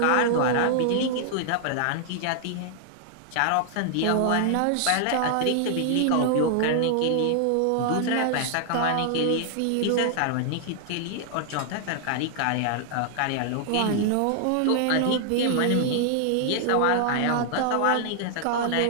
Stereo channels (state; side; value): different; both; correlation -0.01